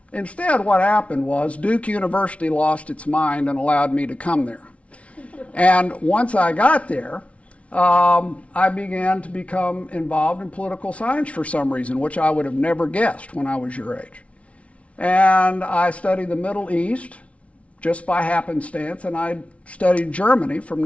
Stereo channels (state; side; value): late; right; 0.063 ms